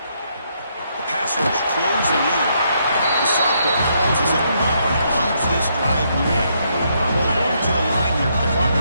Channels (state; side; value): inverted; both; correlation -0.75